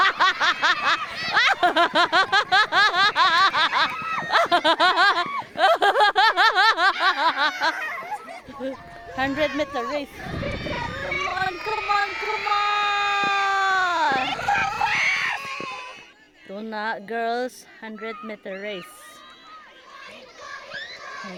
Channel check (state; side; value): identical; both; correlation 1.00